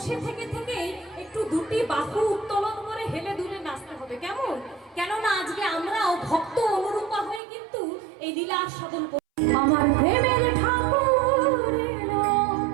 থেকে একটু দুটি বাহু উত্তোলন করে হেলে দুলে নাচতে হবে, কেমন? কেননা আজকে আমরাও ভক্ত অনুরূপা হয়ে কিন্তু এই লীলা আস্বাদন করি। আমার প্রেমের ঠাকুর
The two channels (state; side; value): drops out; left; at 7.4 s